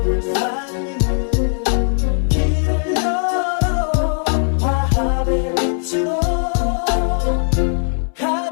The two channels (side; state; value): right; silent; 66 dB below the other